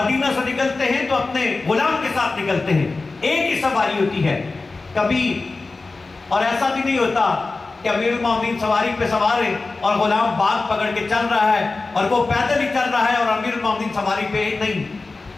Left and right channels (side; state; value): right; quieter; 3.6 dB